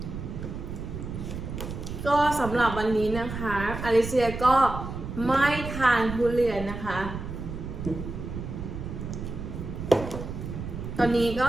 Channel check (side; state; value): right; noise; rumble, 7 dB below the sound